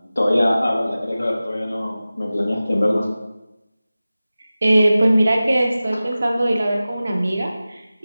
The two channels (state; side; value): inverted; both; correlation -0.96